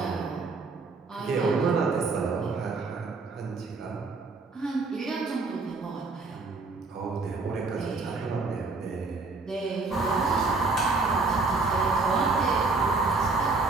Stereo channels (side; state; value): left; quieter; 3.9 dB